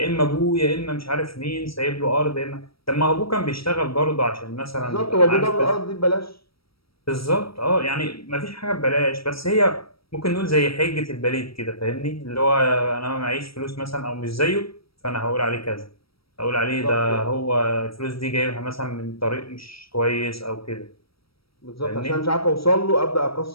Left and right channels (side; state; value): right; late; 0.75 ms